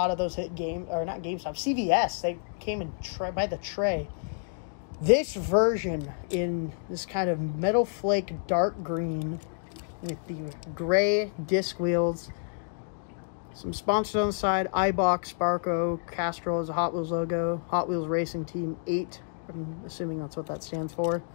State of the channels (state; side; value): silent; right; digital silence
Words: of those hit game, or not GameStop, CVS. They came in by the tray. This version in this kind of metal flake dark green with the gray disc wheels, some sponsors on the side, iBox, Sparco, Castrol is a Hot Wheels logo, Hot Wheels Racing Team 8, I'm assuming that's what that stands for.